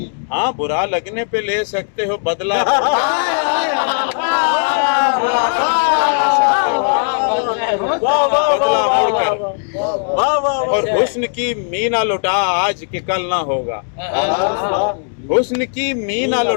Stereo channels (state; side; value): silent; right; digital silence